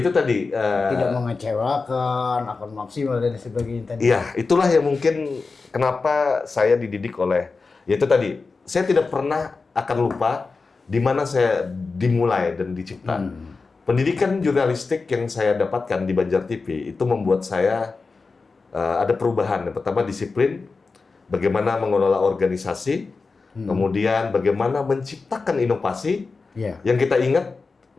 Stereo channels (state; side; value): quieter; right; 4.2 dB